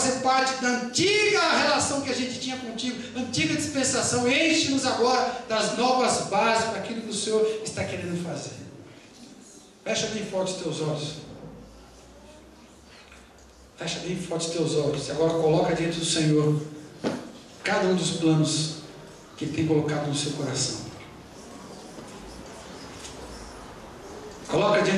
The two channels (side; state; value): both; identical; correlation 1.00